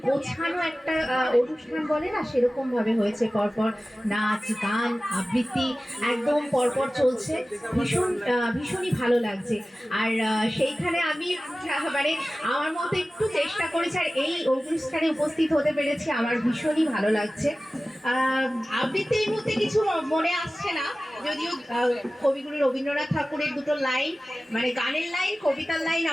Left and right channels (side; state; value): both; normal; correlation 0.96